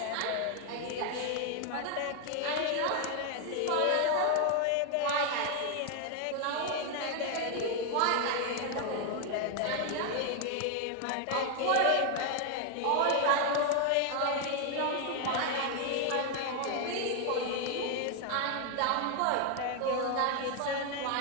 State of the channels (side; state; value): both; different; correlation 0.01